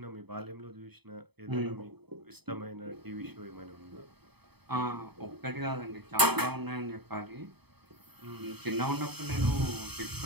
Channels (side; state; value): left; late; 0.98 ms